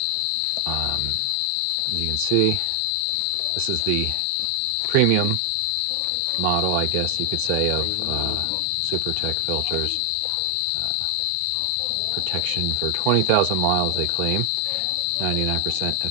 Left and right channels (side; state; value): both; different; correlation 0.00